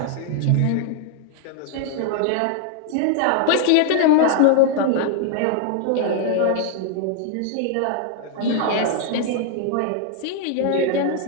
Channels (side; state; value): both; different; correlation 0.00